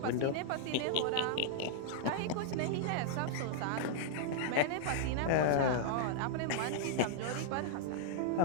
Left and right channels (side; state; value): both; different; correlation -0.01